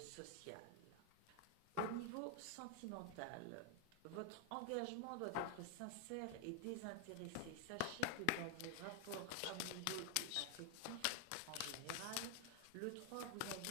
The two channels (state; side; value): different; both; correlation 0.00